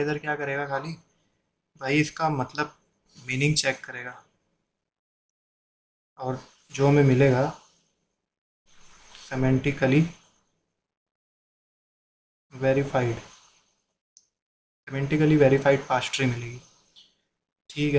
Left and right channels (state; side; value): identical; both; correlation 1.00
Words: क्या करेगा खाली, भाई इसका मतलब मीनिंग चेक करेगा, और जो हमें मिलेगा सेमेंटिकली वेरीफाइड, सेमेंटिकली वेरीफाइड पार्स ट्री मिलेगी। ठीक